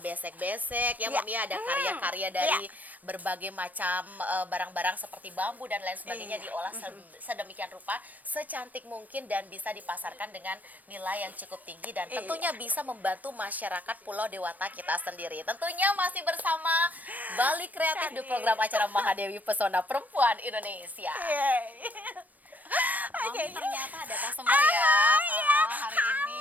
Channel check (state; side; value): late; left; 0.081 ms